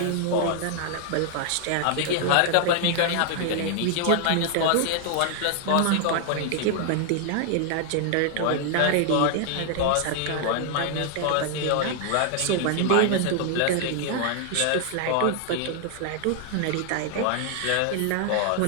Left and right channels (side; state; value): both; different; correlation 0.00